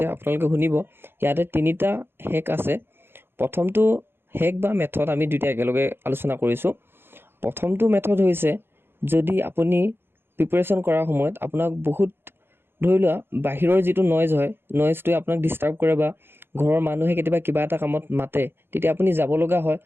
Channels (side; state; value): left; late; 0.11 ms